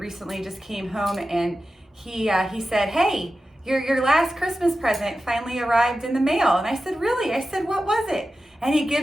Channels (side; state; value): both; normal; correlation 0.93